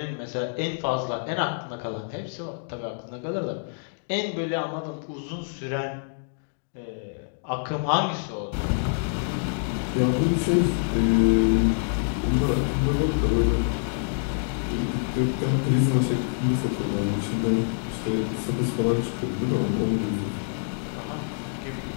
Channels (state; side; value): silent; right; digital silence